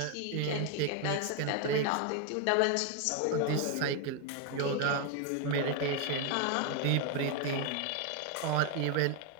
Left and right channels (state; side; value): different; both; correlation 0.01